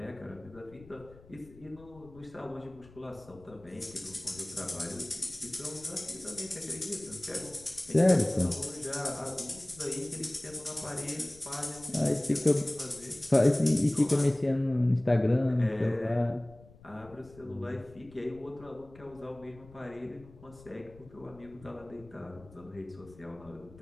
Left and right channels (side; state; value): left; noise; rumble, 22 dB below the sound